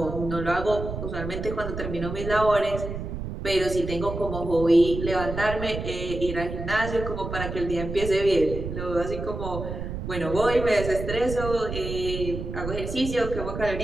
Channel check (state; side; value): noise; right; rumble, 6 dB below the sound